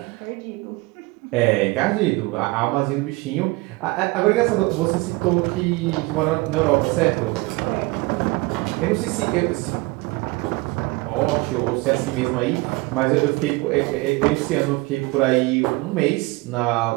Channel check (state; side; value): quieter; left; 23.7 dB